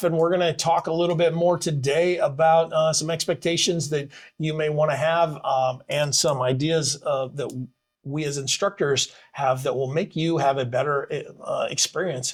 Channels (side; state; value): both; identical; correlation 1.00